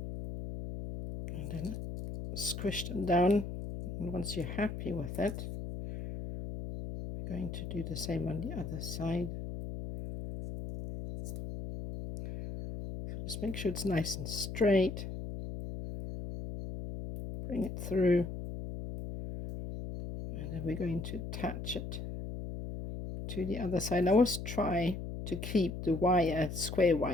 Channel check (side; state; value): left; noise; hum, 7 dB below the sound